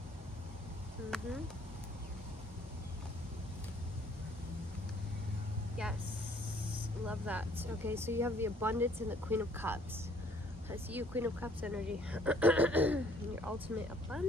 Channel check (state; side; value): normal; both; correlation 0.60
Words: Yes. Love that. Okay, so you have the abundance and the Queen of Cups. I see you, Queen of Cups energy. Your ultimate